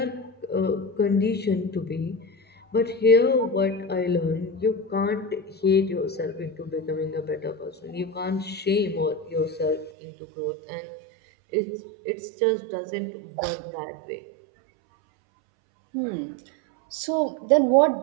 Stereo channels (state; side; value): drops out; left; at 9.9 s